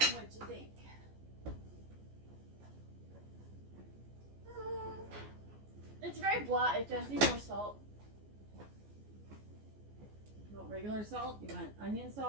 What'd you think? It's very blah. It does need more salt. You want regular salt? You want onion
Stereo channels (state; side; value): late; left; 14 ms